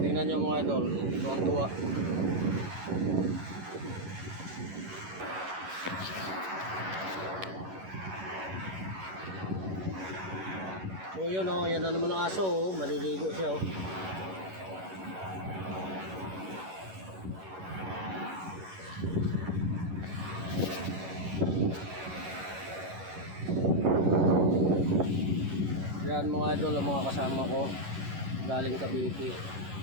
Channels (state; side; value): late; left; 11 ms